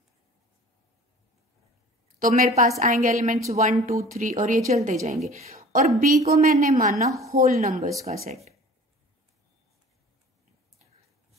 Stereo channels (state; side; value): normal; both; correlation 0.45